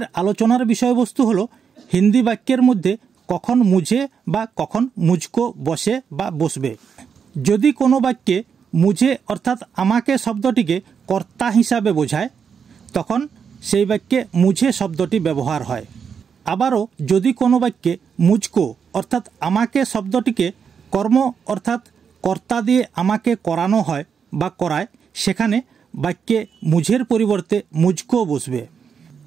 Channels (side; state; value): left; quieter; 6.7 dB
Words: আলোচনার বিষয়বস্তু হলো হিন্দি বাক্যের মধ্যে কখন মুঝে বা কখন মুঝকো বসে বা বসবে। যদি কোনো বাক্যে মুঝে অর্থাৎ আমাকে শব্দটিকে কর্তা হিসাবে বোঝায় তখন সেই বাক্যে মুঝে শব্দটি ব্যবহার হয়। আবারও যদি কোনো বাক্যে মুঝকো অর্থাৎ আমাকে শব্দটিকে কর্ম অর্থাৎ কর্তা দিয়ে আমাকে করানো হয় বা করায় সেখানে বাক্যে মুঝের পরিবর্তে মুঝকো বসবে।